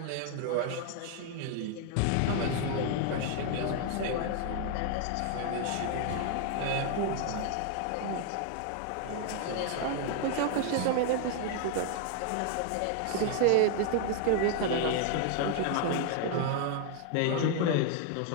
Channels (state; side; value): different; both; correlation 0.00